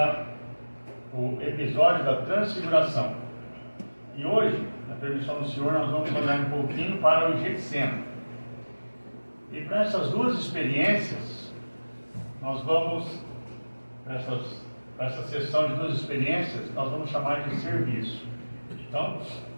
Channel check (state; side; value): inverted; both; correlation -1.00